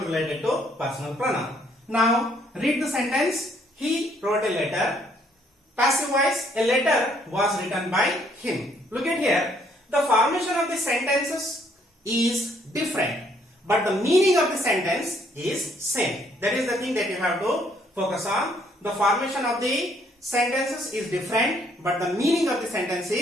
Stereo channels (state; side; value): normal; both; correlation 0.67